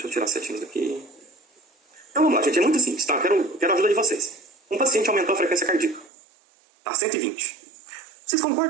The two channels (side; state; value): left; drops out; at 6.1 s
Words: eu tirar as setinhas daqui. Então vamos lá, gente. É muito simples, tá? Quero a ajuda de vocês. Um paciente aumentou a frequência cardíaca. Tá, 120. Vocês